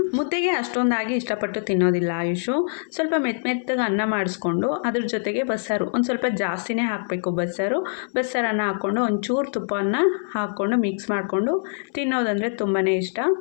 ಮುದ್ದೆಗೆ ಅಷ್ಟೊಂದಾಗಿ ಇಷ್ಟಪಟ್ಟು ತಿನ್ನೋದಿಲ್ಲ ಆಯುಷು. ಸ್ವಲ್ಪ ಮೆತ್ತಗೆ ಅನ್ನ ಮಾಡಿಸ್ಕೊಂಡು ಅದ್ರ ಜೊತೆಗೆ ಬಸ್ಸಾರು ಒಂದು ಸ್ವಲ್ಪ ಜಾಸ್ತಿನೇ ಹಾಕಬೇಕು. ಬಸ್ಸಾರನ್ನ ಹಾಕ್ಕೊಂಡು ಒಂಚೂರು ತುಪ್ಪವನ್ನು ಹಾಕ್ಕೊಂಡು ಮಿಕ್ಸ್ ಮಾಡಿಕೊಂಡು ತಿನ್ನೋದಂದರೆ ತುಂಬಾ ಇಷ್ಟ.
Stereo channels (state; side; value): silent; right; 63 dB below the other